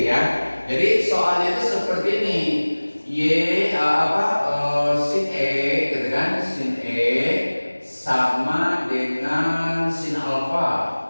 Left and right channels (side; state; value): both; inverted; correlation -1.00